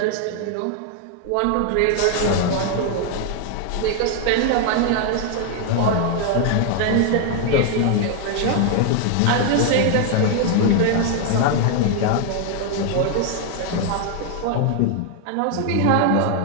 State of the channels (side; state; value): both; different; correlation 0.00